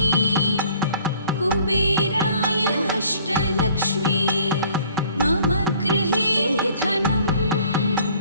कुबेराय अष्टलक्ष्मी मम गृहे धनं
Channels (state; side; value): inverted; both; correlation -0.56